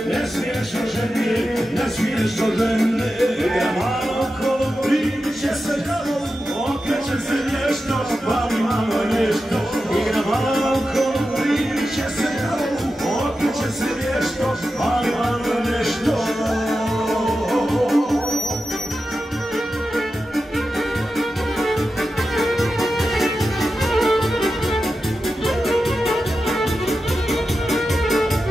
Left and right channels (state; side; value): normal; both; correlation 0.91